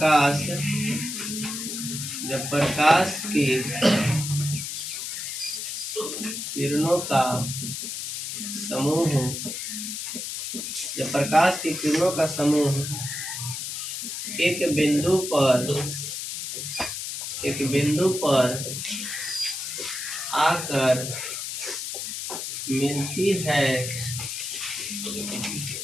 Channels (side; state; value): left; noise; hiss, 5 dB below the sound